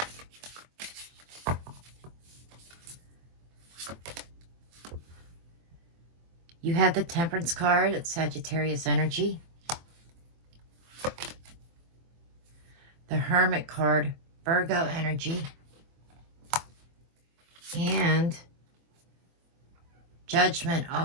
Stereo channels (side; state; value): left; late; 23 ms